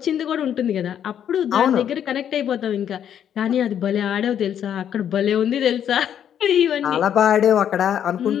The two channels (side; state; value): right; quieter; 9.4 dB